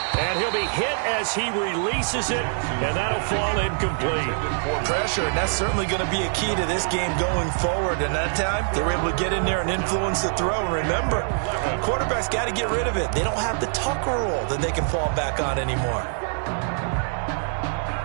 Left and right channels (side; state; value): left; silent; 62 dB below the other